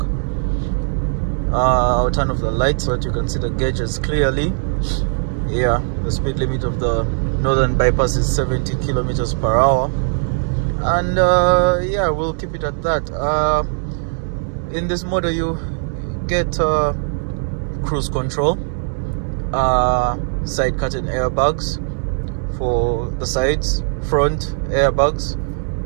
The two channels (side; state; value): left; silent; 66 dB below the other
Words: I'll turn off the lights so that you can see the gauges clearly. Yeah, the speed limit of the northern bypass is 70 kilometers per hour, and yeah, we'll keep it at that. In this model you get cruise control, side curtain airbags for the sides, front airbags,